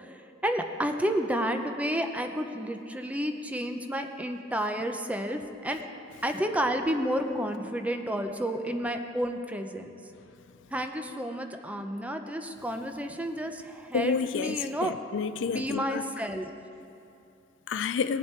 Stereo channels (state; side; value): normal; both; correlation 0.59